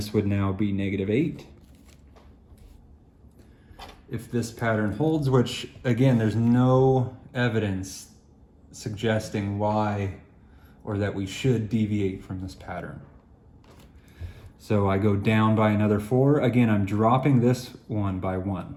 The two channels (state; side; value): identical; both; correlation 1.00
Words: would now be negative 8. if this pattern holds, which again, there's no evidence suggesting why or that we should deviate from this pattern. So I go down by another 4. Again, I'm dropping this one by 1.